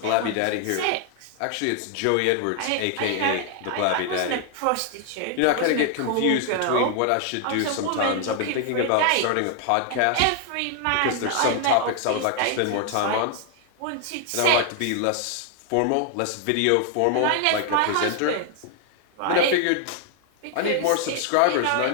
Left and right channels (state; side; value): different; both; correlation 0.00